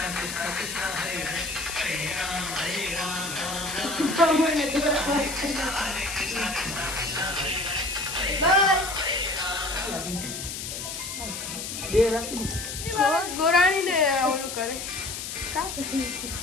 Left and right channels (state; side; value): noise; left; hiss, 6 dB below the sound